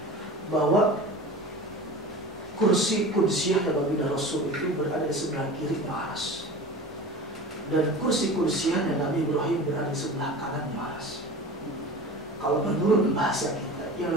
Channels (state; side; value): normal; both; correlation 0.35